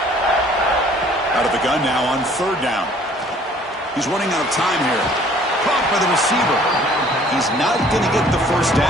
Out of the gun now on 3rd down. He's running out of time here. Caught by the receiver. He's not going to get the first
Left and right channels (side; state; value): both; normal; correlation 0.56